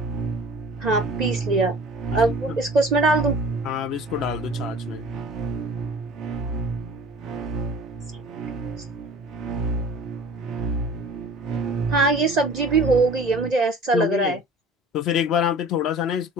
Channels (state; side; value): normal; both; correlation 0.44